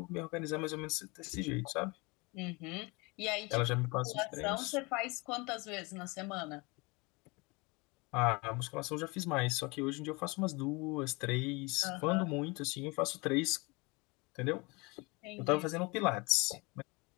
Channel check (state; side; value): quieter; right; 26.8 dB